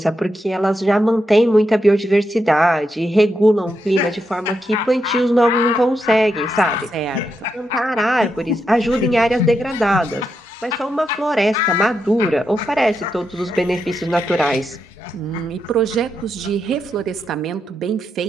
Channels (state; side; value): normal; both; correlation 0.84